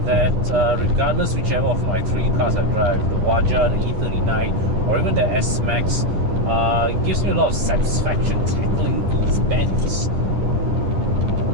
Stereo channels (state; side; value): late; left; 11 ms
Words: that regardless whichever of my three cars I drive, the Waja, the E39 or even the S-Max, it gives me a lot of satisfaction tackling these bends.